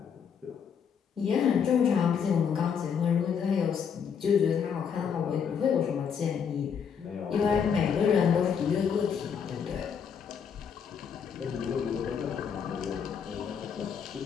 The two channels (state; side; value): quieter; right; 7.1 dB